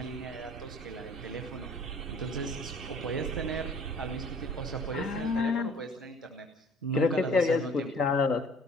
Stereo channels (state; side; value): normal; both; correlation 0.51